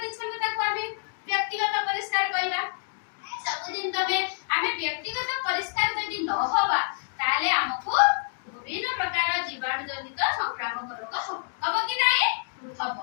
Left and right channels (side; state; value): right; silent; digital silence